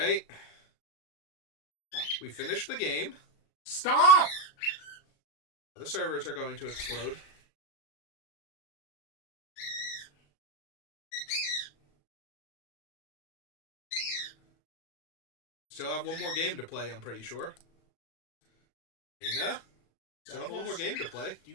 We finished the game. Stop! The servers are going to explode. Still have one more game to play, I'm pretty sure. Dana? Still have one more game to play. Do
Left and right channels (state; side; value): late; right; 36 ms